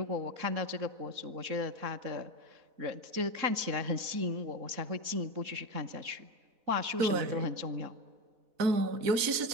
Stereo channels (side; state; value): left; late; 4.1 ms